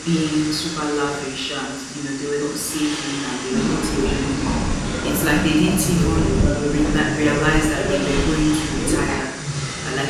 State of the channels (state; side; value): identical; both; correlation 1.00